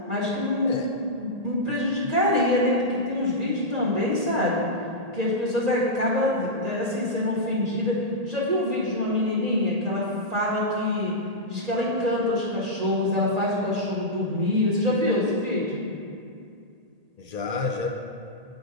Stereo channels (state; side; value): late; left; 1.8 ms